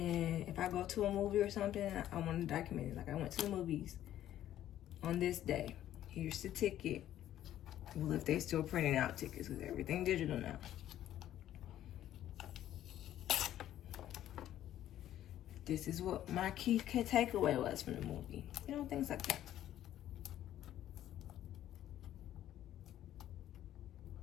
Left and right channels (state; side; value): quieter; right; 12.3 dB